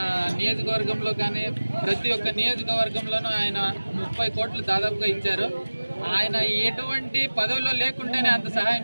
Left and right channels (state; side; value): inverted; both; correlation -1.00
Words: నియోజకవర్గంలో కానీ ప్రతి ఒక్క నియోజకవర్గంలోనూ ఆయన 30 కోట్లు దాదాపుగా ఇచ్చారు. ఆయన ఎటువంటి పదవిలో లేకుంటేనే అంత సహాయం